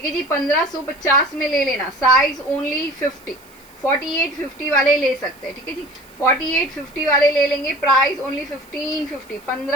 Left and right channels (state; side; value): noise; right; hiss, 27 dB below the sound